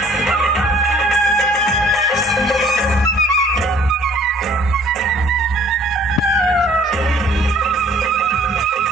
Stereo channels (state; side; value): normal; both; correlation 0.56